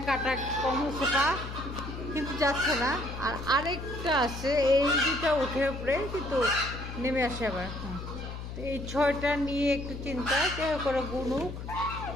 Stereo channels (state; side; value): noise; left; hum, 8 dB below the sound